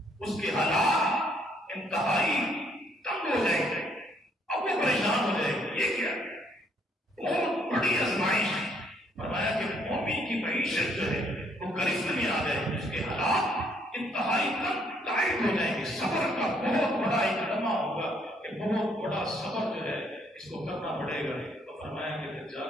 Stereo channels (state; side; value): normal; both; correlation 0.68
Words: اس کے حالات انتہائی تنگ ہو جائیں گے. اب وہ پریشان ہو جائے گی. یہ کیا بہت بڑی آزمائش. فرمایا کہ مومن کی معیشت جو ہے وہ گرفت میں آ جائے گی، اس کے حالات انتہائی ٹائٹ ہو جائیں گے. صبر کا بہت بڑا ایک لمحہ ہوگا کہ بہت بڑا صبر جو ہے اس کو کرنا پڑے گا. تو فرمایا کہ دجال